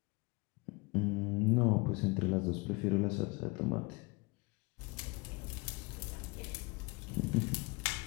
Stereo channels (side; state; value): right; quieter; 27.1 dB